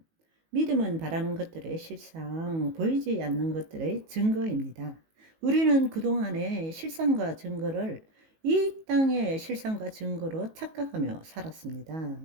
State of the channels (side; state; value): left; late; 19 ms